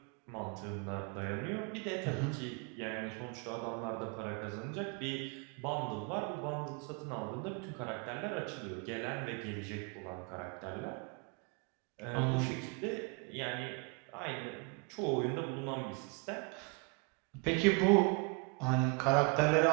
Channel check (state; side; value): quieter; left; 33.0 dB